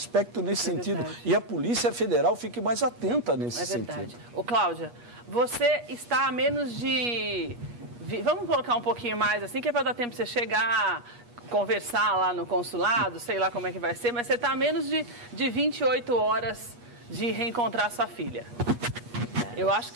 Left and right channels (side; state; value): left; late; 8.3 ms